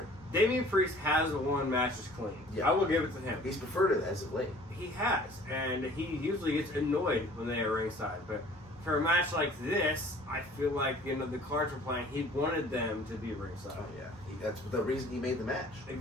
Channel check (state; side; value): normal; both; correlation 0.50